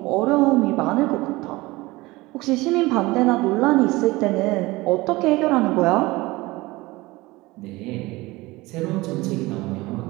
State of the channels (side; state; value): left; quieter; 20.9 dB